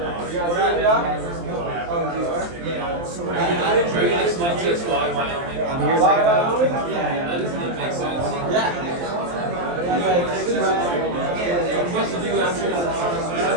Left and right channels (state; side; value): late; left; 23 ms